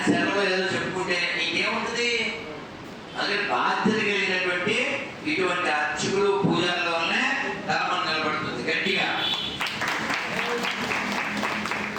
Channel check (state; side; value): identical; both; correlation 1.00